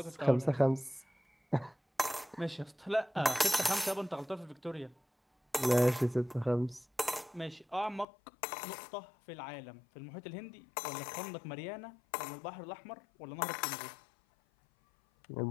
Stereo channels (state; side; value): drops out; right; at 8.1 s